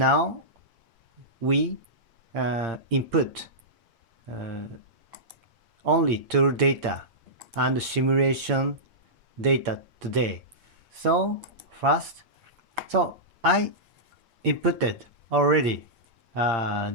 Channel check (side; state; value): left; late; 8.7 ms